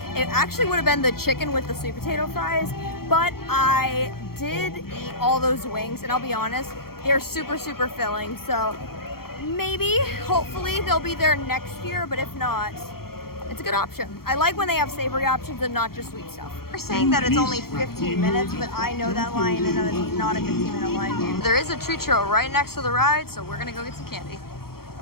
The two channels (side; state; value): right; late; 0.94 ms